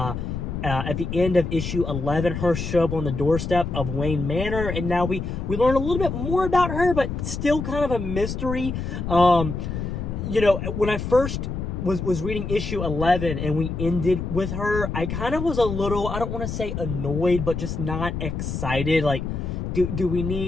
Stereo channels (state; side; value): noise; left; rumble, 4 dB below the sound